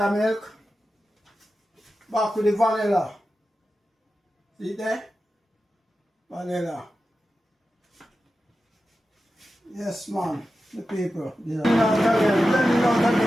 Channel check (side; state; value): both; normal; correlation 0.92